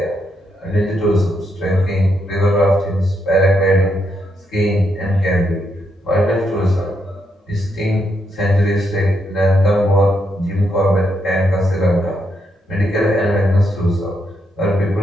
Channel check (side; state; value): both; normal; correlation 0.79